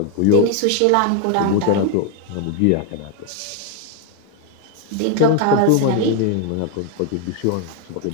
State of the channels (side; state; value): both; different; correlation 0.01